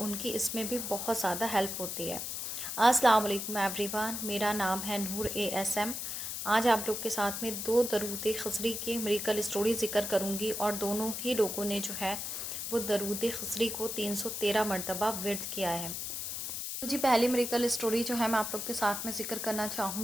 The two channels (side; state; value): left; noise; hiss, 4 dB below the sound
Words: کی اس میں بھی بہت زیادہ ہیلپ ہوتی ہے۔ السلام علیکم ایوری ون، میرا نام ہے نور ASM۔ آج آپ لوگ کے ساتھ میں 2 درود خضری کے میریکل اسٹوری ذکر کروں گی، اور دونوں ہی لوگوں نے جو ہے وہ درود خضری کو 313 مرتبہ ورد کیا ہے۔ تو جی پہلی میریکل اسٹوری جو ہے میں آپ لوگ کے ساتھ میں ذکر کرنا